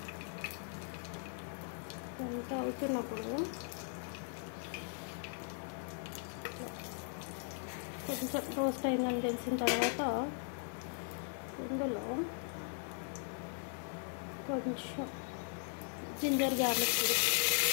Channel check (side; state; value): right; silent; 52 dB below the other